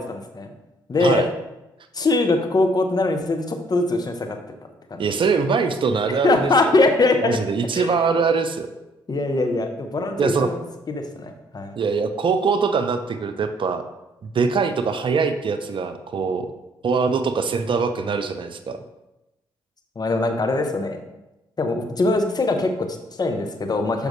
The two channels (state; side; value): normal; both; correlation 0.63